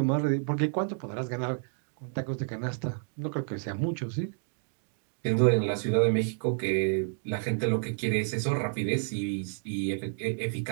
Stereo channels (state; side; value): silent; left; 58 dB below the other